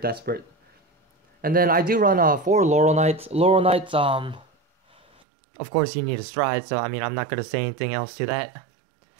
And then I do run 4 Laurel Knights. Laurel Knights, of course you need a stride, so I mean I'm not gonna say anything else to that.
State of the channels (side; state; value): left; drops out; at 5.2 s